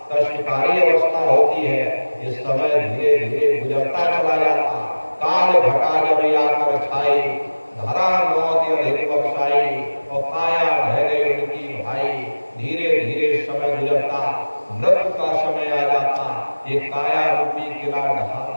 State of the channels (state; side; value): inverted; both; correlation -1.00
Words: कष्टकारी अवस्था होती है। इस समय धीरे धीरे गुजरता चला जाता। काल घटा जब आकर छाई, धरा मौत अधिक बख्शाई और काया ढह गई उनकी भाई। धीरे धीरे समय गुजरता, मृत्यु का समय आ जाता, ये काया रूपी किला ढहा